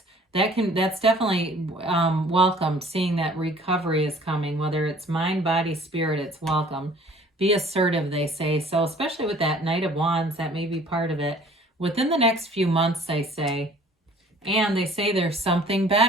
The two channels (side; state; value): both; normal; correlation 0.52